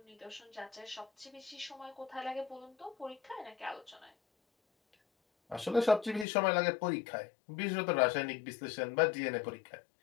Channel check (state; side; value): drops out; right; at 6.2 s